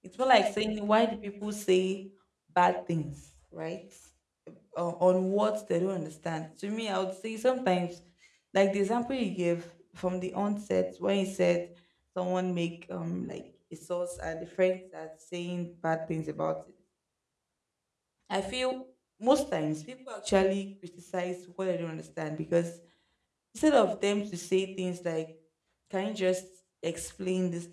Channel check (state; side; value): identical; both; correlation 1.00